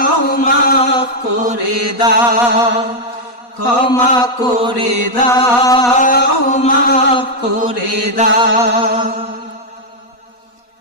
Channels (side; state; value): right; late; 4.1 ms